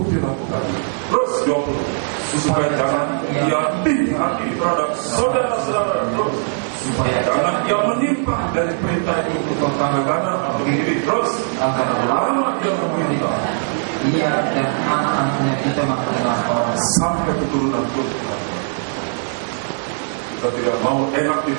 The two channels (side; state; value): left; silent; digital silence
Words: dilakukan. Terus 20, supaya jangan ia tinggi hati terhadap saudara-saudara. Terus supaya jangan ia menyimpang dari perintah itu ke kanan atau kiri. Terus agar lama ia memerintah ia dan anak-anaknya kita mengenal orang sampai keturunan pun Tuhan. Kita tidak mau enak